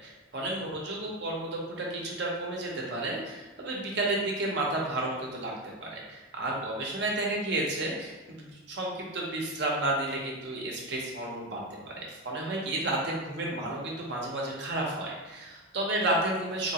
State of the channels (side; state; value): both; normal; correlation 0.13